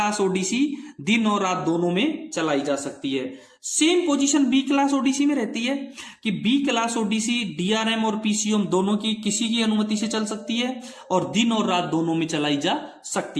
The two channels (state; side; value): identical; both; correlation 1.00